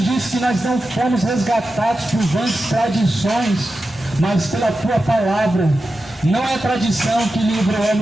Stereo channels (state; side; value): normal; both; correlation 0.91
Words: disse que nós não fomos resgatados por vãs tradições, mas pela tua palavra. Não é tradição que livra o